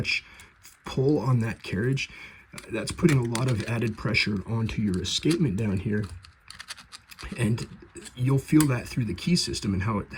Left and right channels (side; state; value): both; identical; correlation 1.00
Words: pull on that carriage, that's putting a lot of added pressure onto your escapement down here, and you'll feel that through the key system and how it